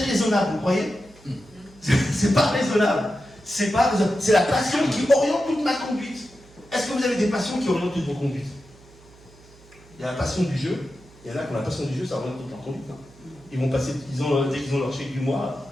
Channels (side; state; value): right; noise; hum, 25 dB below the sound